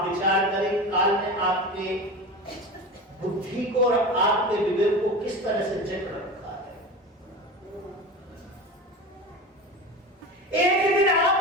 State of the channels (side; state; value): both; normal; correlation 0.28